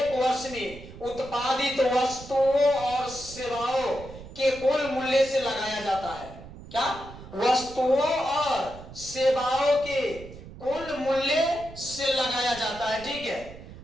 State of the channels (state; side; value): noise; right; rumble, 16 dB below the sound